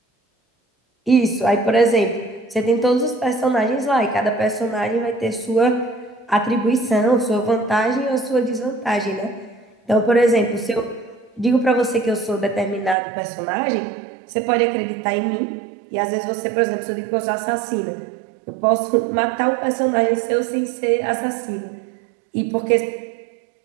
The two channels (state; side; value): drops out; left; at 13.0 s